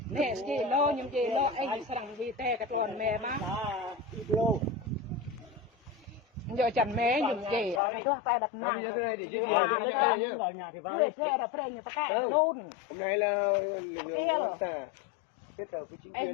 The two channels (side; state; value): right; drops out; at 7.8 s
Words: nè gì lo nhưng gì lo anh sang vì thế cái con mẹ má giờ chẳng mẹ nhưng gì cái con phải đập nàng vui thế đập thế như cái luôn hôm nay là lực lượng xã kết hợp với chính